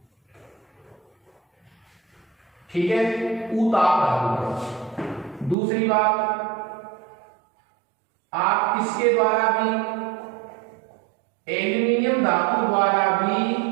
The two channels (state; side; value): drops out; left; at 5.6 s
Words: ठीक है? उताप धातुकरण। दूसरी बात, आप किसके द्वारा भी, एल्यूमिनियम धातु द्वारा भी